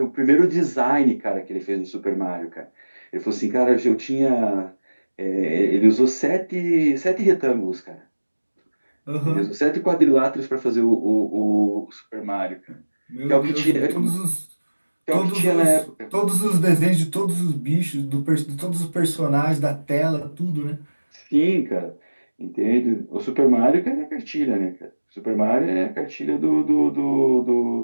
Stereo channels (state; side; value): inverted; both; correlation -1.00